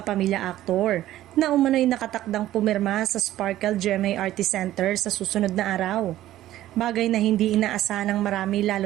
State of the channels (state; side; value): quieter; left; 13.9 dB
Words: aktor na umano'y nakatakdang pumirma sa Sparkle GMA Artist Center sa susunod na araw. Bagay na hindi inaasahan ng marami